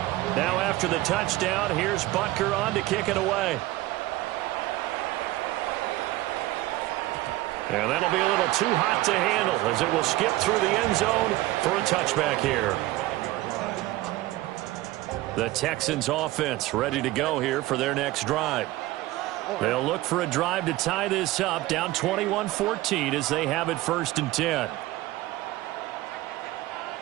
Now after the touchdown, here's Butker on to kick it away. And that'll be a little too hot to handle as it will skip through the end zone for a touchback here. The Texans offense ready to go here for their next drive. They'll look for a drive to tie this up, down 21-14 as they have it 1st and 10.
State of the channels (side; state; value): left; quieter; 17.5 dB